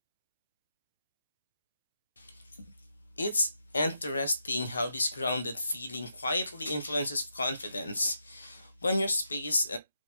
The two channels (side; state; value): both; inverted; correlation -0.82